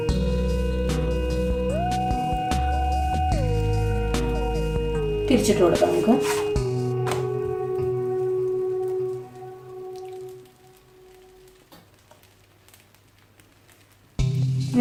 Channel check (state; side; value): identical; both; correlation 1.00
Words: തിരിച്ചിട്ട് കൊടുക്കാം നമുക്ക്.